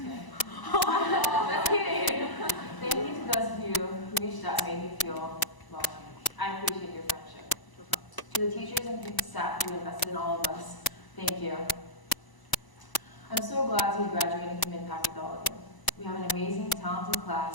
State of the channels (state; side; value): late; right; 1.0 ms